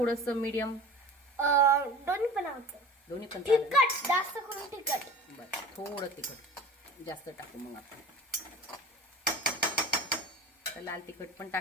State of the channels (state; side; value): normal; both; correlation 0.38